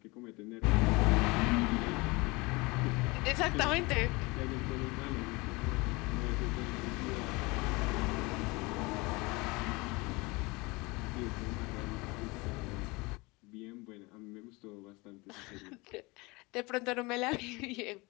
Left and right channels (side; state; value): right; quieter; 24.9 dB